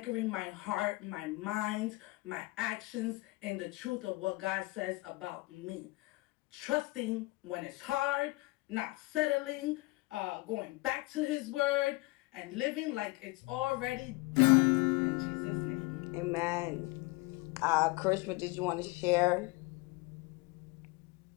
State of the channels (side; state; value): right; quieter; 22.7 dB